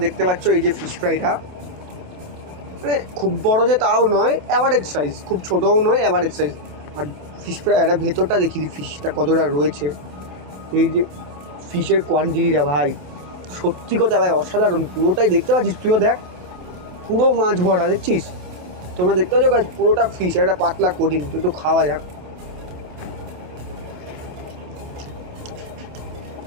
দেখতে পাচ্ছ এই যে ফিশ ফ্রাইটা, মানে খুব বড় যে তাও নয়, অ্যাভারেজ সাইজ, খুব ছোটও নয়, অ্যাভারেজ সাইজ। আর ফিশ ফ্রাই এটা ভেতরটা দেখি দিই ফিশটা কতটা রয়েছে। এই যে ফিশের কোয়ান্টিটিটা ভাই, সত্যি কথা ভাই অসাধারণ। পুরোটাই দেখতে পাচ্ছিস, তুইও দেখ, পুরো মাছ ভরা দেখছিস। তোমরা দেখতে পাচ্ছ গাইস, পুরোটা ফিশ, একটা পাতলা কোডিং। একটু খাওয়া যাক।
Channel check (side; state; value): left; late; 27 ms